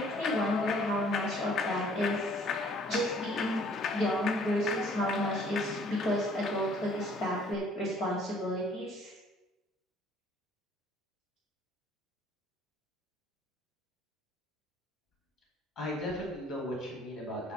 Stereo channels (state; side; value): normal; both; correlation 0.58